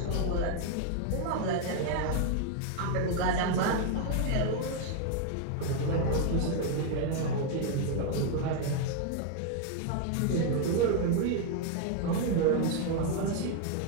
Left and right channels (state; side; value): different; both; correlation 0.00